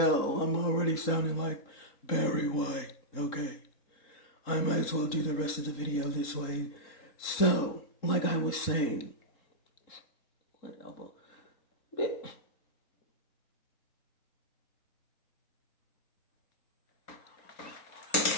I'm already sounding like Barry White. Okay. I might as well do the rest of the video this way. So, like I was saying, whatever.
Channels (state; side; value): late; right; 3.8 ms